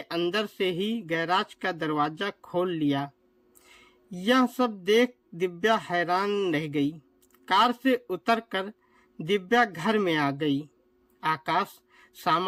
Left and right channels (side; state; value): both; identical; correlation 1.00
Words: अंदर से ही गैराज का दरवाजा खोल लिया। यह सब देख दिव्या हैरान रह गई। कार से उतरकर दिव्या घर में आ गई। आकाश